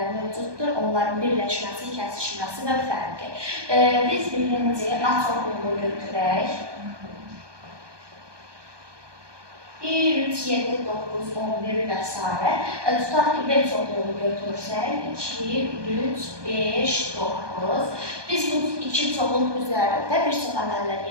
mövcuddur. Onların birləşməsi, kəsişməsi və fərqi. Biz birinci A çoxluğunu götürək. 1, 3, 7, 9, 11 və s. Tutaq ki, B çoxluğunu götürsək, 2, 3, 5, 9. Biz bu iki çoxluq üzərində bir çox əməllər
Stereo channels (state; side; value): late; left; 1.2 ms